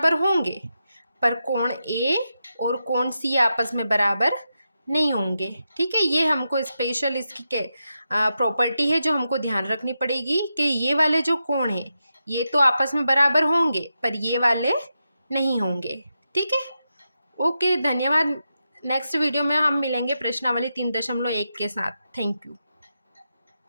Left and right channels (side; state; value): both; inverted; correlation -0.87